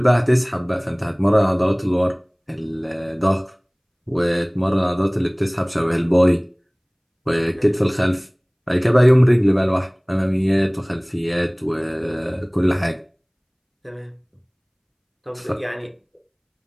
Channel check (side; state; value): both; identical; correlation 1.00